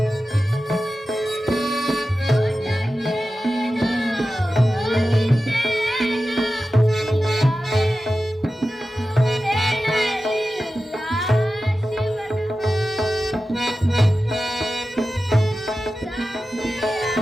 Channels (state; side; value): normal; both; correlation 0.93